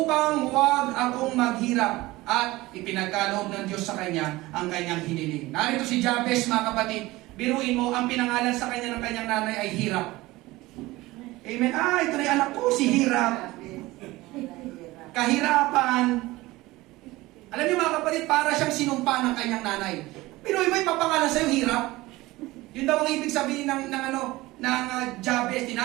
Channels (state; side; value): quieter; left; 19.5 dB